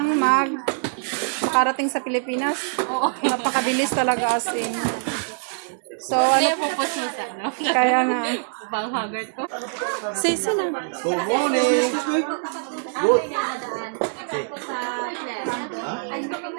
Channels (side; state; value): left; silent; digital silence